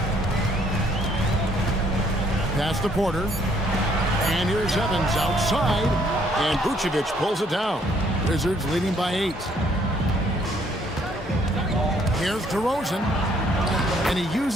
Pass to Porter. And here's Evans outside. And Vucevic pulls it down. Wizards leading by 8. Here's DeRozan. And he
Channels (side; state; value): both; normal; correlation 0.65